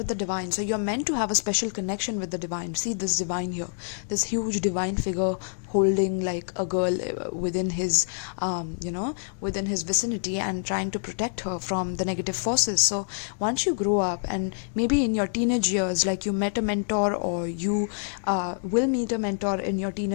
the divine. So you're meant to have a special connection with the divine. See this divine here, this huge divine figure holding like a girl within his within his vicinity and trying to protect her from the negative forces. So once you grow up, and maybe in your teenage years, like, you met a mentor, or you will meet a mentor in your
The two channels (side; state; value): right; silent; digital silence